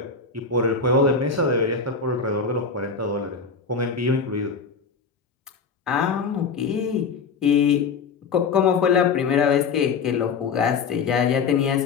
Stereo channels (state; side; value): quieter; right; 5.3 dB